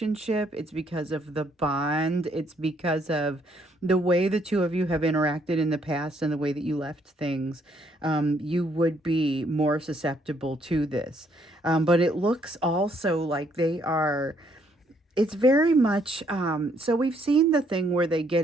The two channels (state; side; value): normal; both; correlation 0.69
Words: it's because of the bond, it's because of the way the two of you have interacted in the past and the way that you left things. You would be more susceptible to this. But it looks also like they are, it's very much so we've seen the thing where they